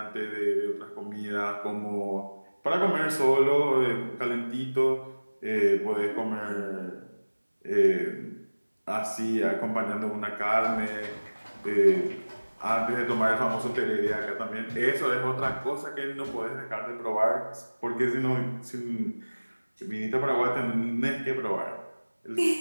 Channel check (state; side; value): inverted; both; correlation -1.00